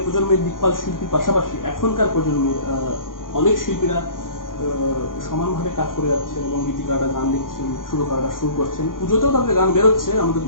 প্রজন্মের দিকপাল শিল্পীর পাশাপাশি এখনকার প্রজন্মের অনেক শিল্পীরা সমানভাবে কাজ করে যাচ্ছে, এবং গীতিকাররা গান লিখছেন, সুরকাররা সুর করছেন, পুজোতেও তাদের গান বেরোচ্ছে। আমাদের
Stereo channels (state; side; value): late; right; 0.90 ms